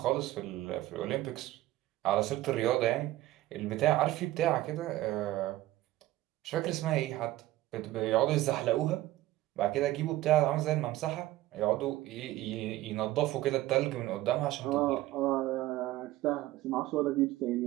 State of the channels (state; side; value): quieter; left; 16.0 dB